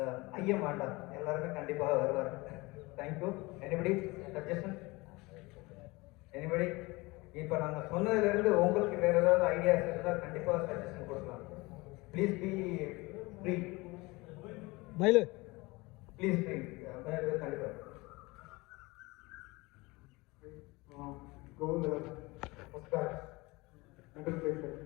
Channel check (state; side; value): quieter; right; 23.4 dB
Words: ஐயம் வேண்டாம், எல்லாருமே கண்டிப்பாக வருவார். தேங்க்யூ. Anybody suggestion? எனிபடி? இப்போ நாங்கள் சொன்னதுலேருந்து உங்களுக்கு வேறு ஏதாவது ஐடியாஸ் இருந்தால் கண்டிப்பாக சஜஷன் கொடுக்கலாம். Please be free. மயிலு ப்ளீஸ் ஃப்ரீ. கண்டிப்பாக Govind, first batch, middle place.